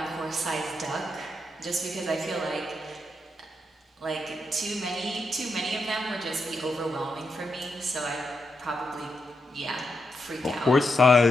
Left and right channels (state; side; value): normal; both; correlation 0.83